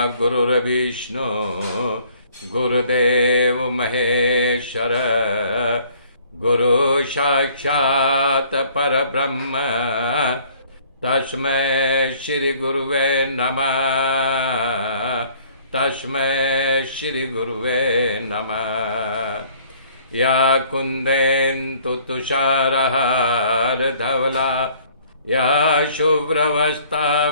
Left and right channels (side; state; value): both; inverted; correlation -0.58